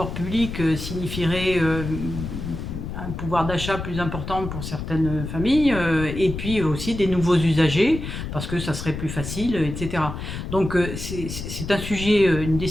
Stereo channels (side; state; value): left; noise; rumble, 7 dB below the sound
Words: publics signifierait un pouvoir d'achat plus important pour certaines familles, et puis aussi des nouveaux usagers, parce que ça serait plus facile, etc. Donc c'est un sujet, une